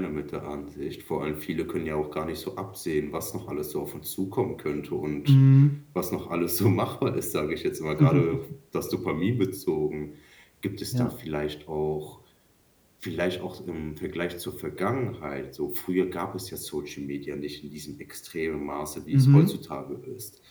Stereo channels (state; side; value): identical; both; correlation 1.00